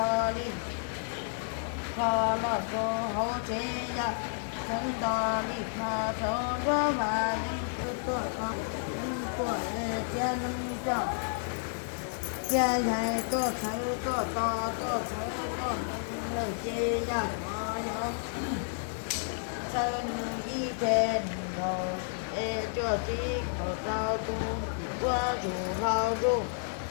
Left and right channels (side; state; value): right; silent; 57 dB below the other